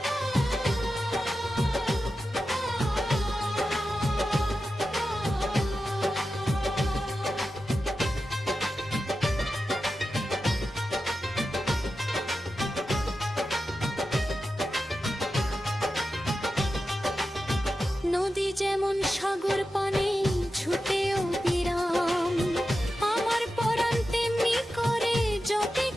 নদী যেমন সাগর পানে ছুটেও বিরাম, আমার পরাণ তেমনি করে জপে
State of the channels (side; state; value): both; normal; correlation 0.91